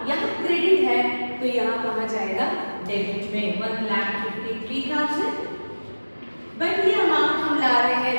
यहाँ क्रेडिट है तो यहाँ कहाँ जाएगा, डेबिट में 1,53,000। बट ये अमाउंट हम ला रहे हैं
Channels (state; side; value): inverted; both; correlation -1.00